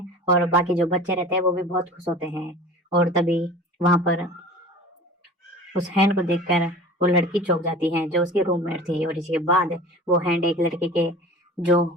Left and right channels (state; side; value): normal; both; correlation 0.39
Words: और बाकी जो बच्चे रहते हैं वो भी बहुत खुश होते हैं। और तभी वहां पर उस हैंड को देखकर वो लड़की चौंक जाती है जो उसकी रूममेट थी। और इसके बाद वो हैंड एक लड़के के जो